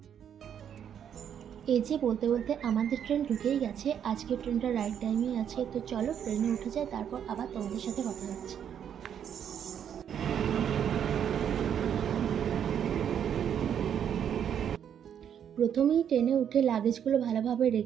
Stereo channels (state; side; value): quieter; left; 8.8 dB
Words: এই যে বলতে বলতে আমাদের ট্রেন ঢুকেই গেছে। আজকে ট্রেনটা রাইট টাইমে আছে, তো চলো ট্রেনে উঠে যাই, তারপর আবার তোমাদের সাথে কথা হচ্ছে। প্রথমেই ট্রেনে উঠে লাগেজগুলো ভালোভাবে